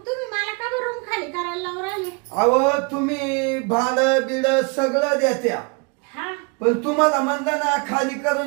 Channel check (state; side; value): quieter; left; 31.7 dB